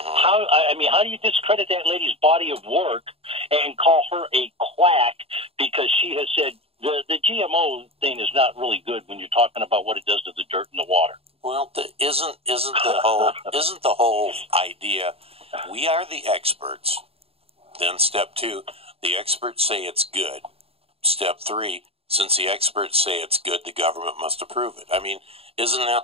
do you discredit that lady's body of work and call her a quack because she has said the GMO thing is not really good when you're talking about what it does to the dirt and the water? Well, isn't the whole idea? We are the experts. Then step 2, the experts say it's good. Step 3, since the experts say it's good, the government must approve it. I mean, isn't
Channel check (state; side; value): late; left; 0.28 ms